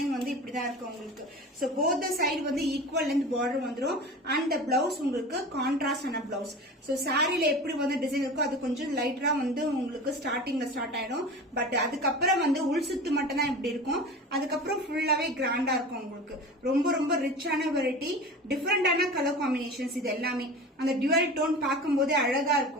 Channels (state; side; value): normal; both; correlation 0.34